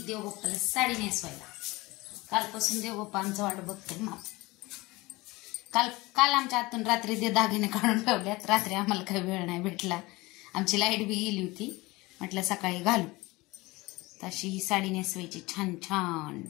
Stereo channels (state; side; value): quieter; right; 21.9 dB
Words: देवबाप्पाला साडी नेसवायला. कालपासून देवबाप्पा आमचं वाट बघतोय. काल आमच्या आतून रात्री ते दागिने काढून ठेवल्यात. रात्री आम्हाला काही वेळ नाही भेटला, आमची लाईट बी गेली होती. म्हटलं सकाळी घालू. तशी ही साडी नेसवायची छान छान.